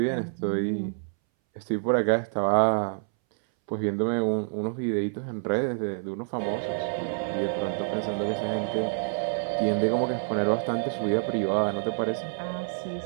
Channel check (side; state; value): left; silent; 60 dB below the other